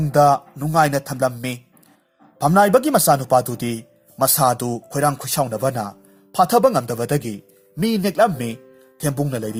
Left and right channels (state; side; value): identical; both; correlation 1.00